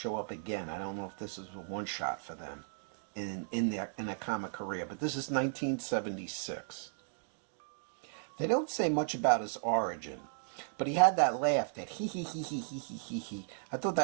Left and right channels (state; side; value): silent; left; digital silence